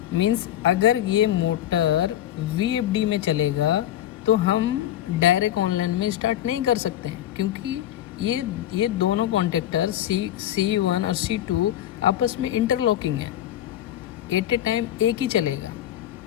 मीन्स अगर ये मोटर VFD में चलेगा तो हम डायरेक्ट ऑनलाइन में स्टार्ट नहीं कर सकते हैं, क्योंकि ये दोनों कॉन्टेक्टर C1 और C2 आपस में इंटरलॉकिंग है। एट ए टाइम एक ही चलेगा,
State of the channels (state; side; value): quieter; right; 12.0 dB